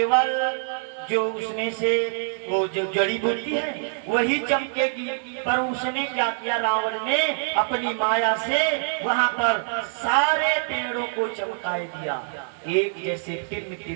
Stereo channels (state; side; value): silent; left; 62 dB below the other